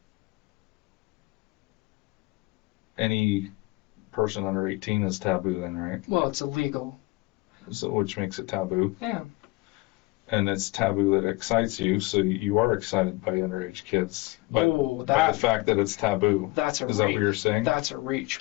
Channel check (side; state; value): right; quieter; 22.2 dB